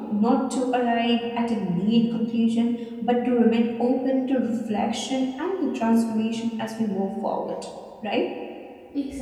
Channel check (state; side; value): identical; both; correlation 1.00